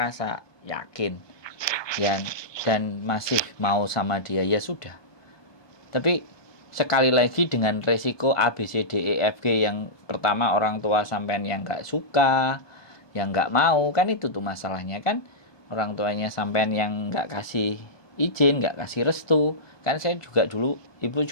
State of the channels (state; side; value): late; right; 1.2 ms